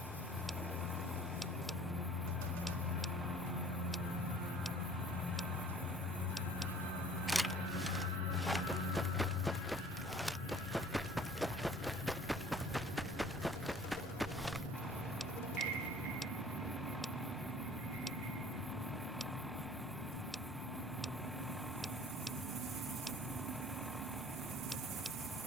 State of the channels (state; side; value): normal; both; correlation 0.51